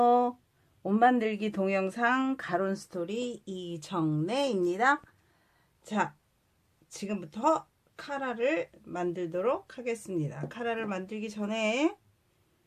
옷 만들기 동영상 가론 스토리 이정래입니다. 자, 지금부터 카라를 만들도록 하겠습니다. 카라를 만들기 전에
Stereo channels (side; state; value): both; identical; correlation 1.00